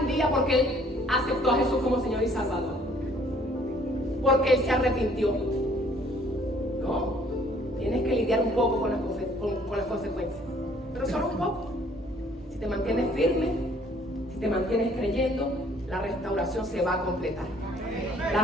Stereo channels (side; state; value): both; normal; correlation 0.59